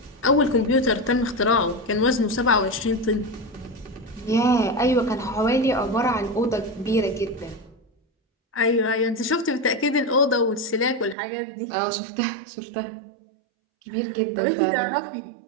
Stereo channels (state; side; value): drops out; left; at 11.2 s